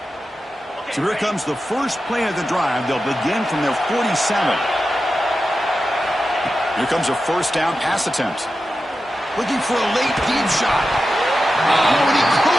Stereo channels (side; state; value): both; normal; correlation 0.91